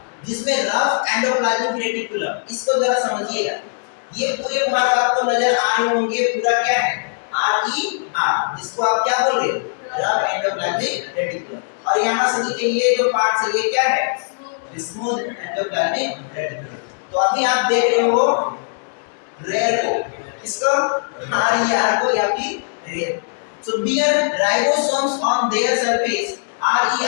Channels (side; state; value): right; silent; digital silence